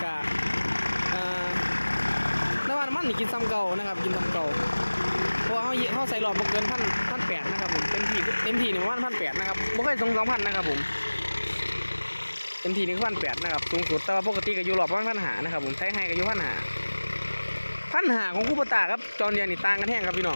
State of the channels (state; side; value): inverted; both; correlation -1.00